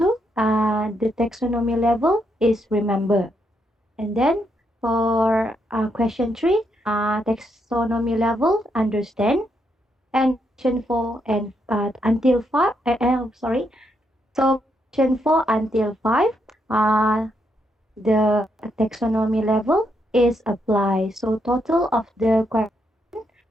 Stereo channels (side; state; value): both; normal; correlation 0.78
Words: the taxonomy level is remember. And then for question 3, taxonomy level understand. And question 4 and until 5, sorry. So question 4 until 5, the taxonomy level is apply. So total of the question